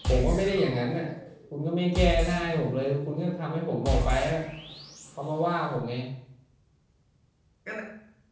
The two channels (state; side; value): identical; both; correlation 1.00